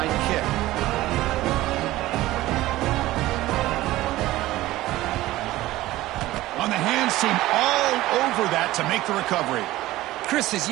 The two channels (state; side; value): quieter; left; 16.7 dB